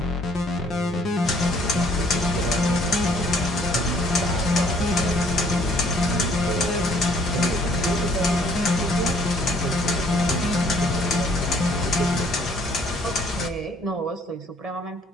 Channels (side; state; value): both; normal; correlation 0.61